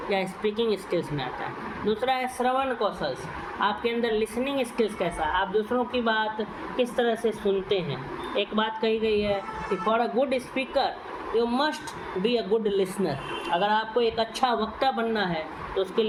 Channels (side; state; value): both; identical; correlation 1.00